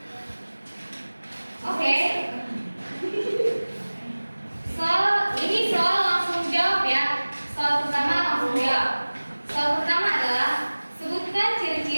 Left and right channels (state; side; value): inverted; both; correlation -1.00